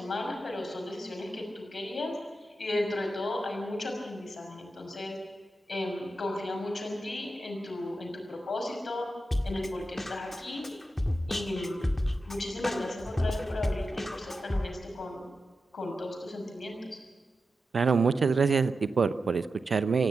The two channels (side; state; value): both; normal; correlation 0.90